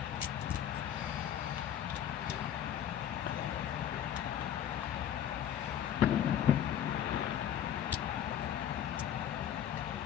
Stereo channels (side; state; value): right; quieter; 10.2 dB